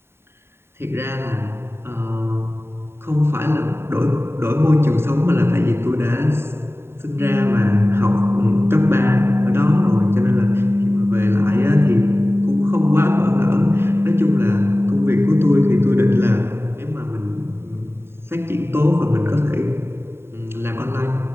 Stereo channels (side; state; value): left; late; 0.12 ms